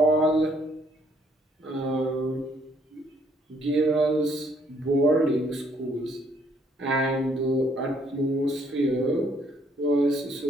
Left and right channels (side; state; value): both; normal; correlation 0.67